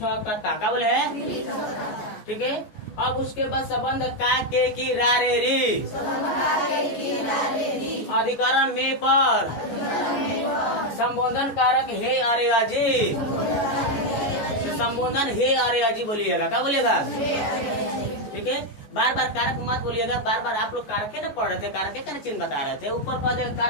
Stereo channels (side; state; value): right; late; 14 ms